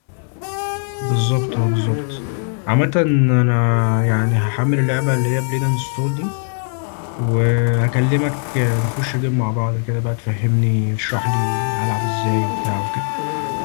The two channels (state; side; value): silent; right; 56 dB below the other